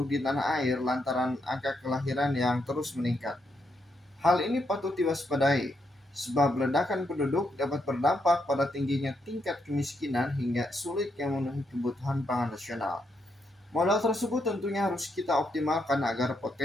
di tanah air lantaran angka kelahiran yang terus meningkat. Hal ini patut diwaspadai, sebab ledakan penduduk dapat berdampak pada tingginya tingkat kemiskinan hingga sulitnya memenuhi kebutuhan pangan nasional. Modal tersebut tentunya harus kita optimalkan agar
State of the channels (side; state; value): both; normal; correlation 0.79